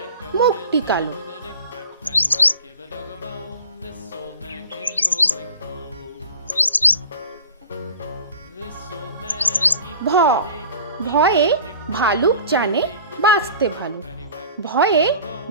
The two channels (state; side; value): inverted; both; correlation -0.43